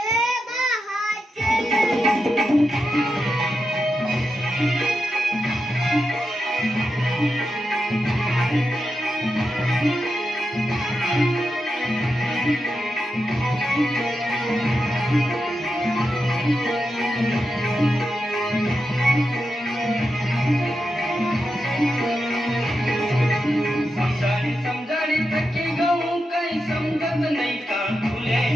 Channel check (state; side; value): normal; both; correlation 0.88